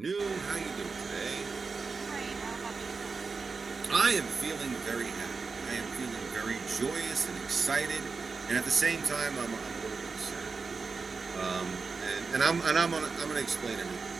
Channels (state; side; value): quieter; left; 4.6 dB